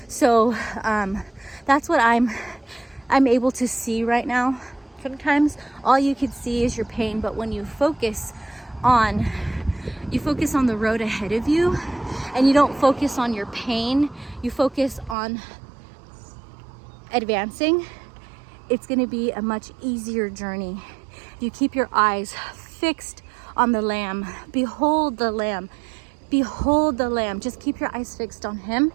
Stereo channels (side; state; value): left; drops out; at 15.2 s